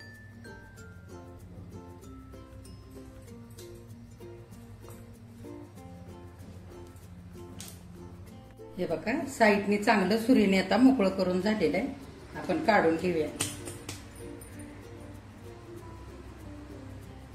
हे बघा साईडने चांगलं सुरीने आता मोकळं करून झालेलं आहे. आपण काढून घेऊया.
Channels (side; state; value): both; identical; correlation 1.00